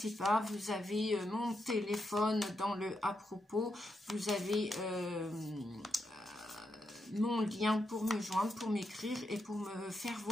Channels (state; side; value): normal; both; correlation 0.84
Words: pas, vous avez mon téléphone dans le à propos, vous avez mon lien pour me joindre, pour m'écrire et pour me faire